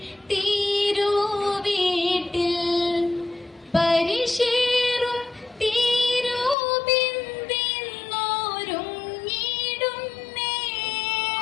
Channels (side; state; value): right; drops out; at 6.6 s